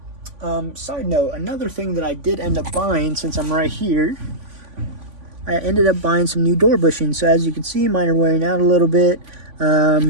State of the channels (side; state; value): left; late; 3.5 ms